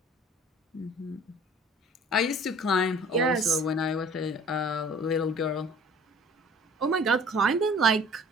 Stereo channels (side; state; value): both; normal; correlation 0.49